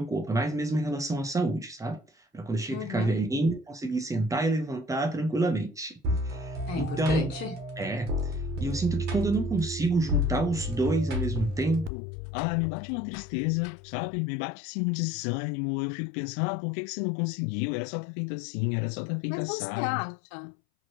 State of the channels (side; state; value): right; drops out; at 11.9 s